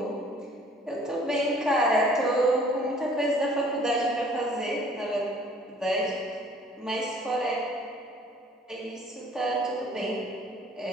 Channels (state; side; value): normal; both; correlation 0.55